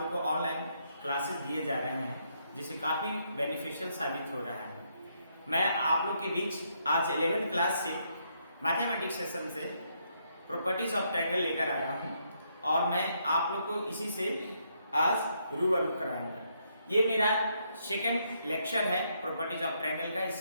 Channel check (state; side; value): inverted; both; correlation -0.75